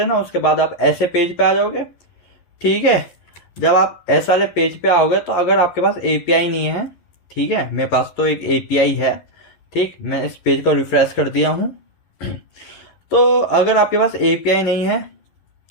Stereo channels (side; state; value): right; late; 11 ms